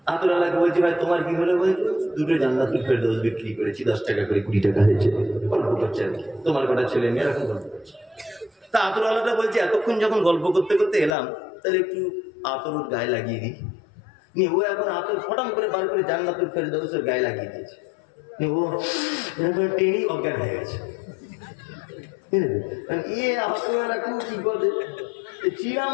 আতরওয়ালাকে বলছি ভাই তোমার কি হলো? বলছি দুটো জান্নাতুল ফেরদৌস বিক্রি করেছি, 10 টাকা করে, 20 টাকা হয়েছে। গল্প করছে আর কি, তোমার কটা ছেলে মেয়ে এরকম গল্প করছে। তা আতরওয়ালাটা বলছে এতক্ষণ যখন গল্প করতে করতে এলাম, তাহলে একটু আতর ওর গায়ে লাগিয়ে দিই। ও এখন আতর ফটাম করে বার করে জান্নাতুল ফেরদৌসের গায়ে লাগিয়ে দিয়েছে। ও এরকম টেনেই অজ্ঞান হয়ে গেছে। কি বলে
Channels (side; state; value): right; drops out; at 11.2 s